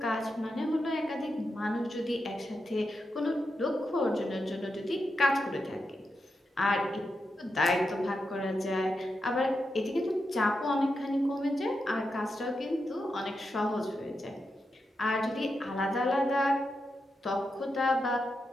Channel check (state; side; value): normal; both; correlation 0.87